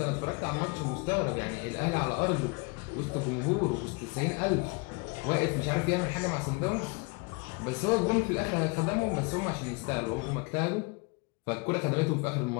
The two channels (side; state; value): right; quieter; 30.0 dB